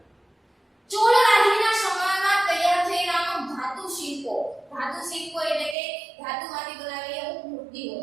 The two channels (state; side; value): drops out; left; at 5.8 s